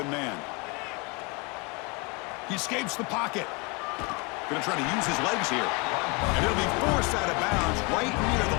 man. He escapes the pocket. Going to try to use his legs here. And he'll be forced out of bounds right near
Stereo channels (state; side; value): quieter; right; 29.5 dB